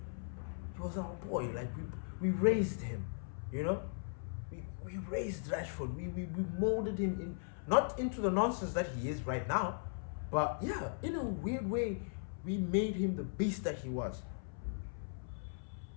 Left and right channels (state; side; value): silent; right; 52 dB below the other